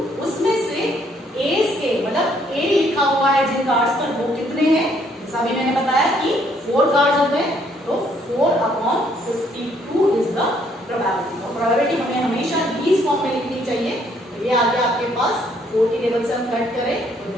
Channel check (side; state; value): both; normal; correlation 0.67